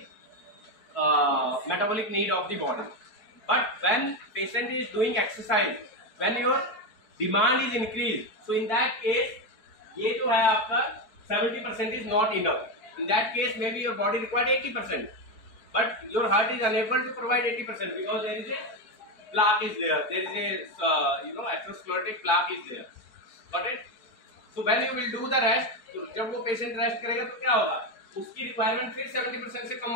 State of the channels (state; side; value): late; right; 4.6 ms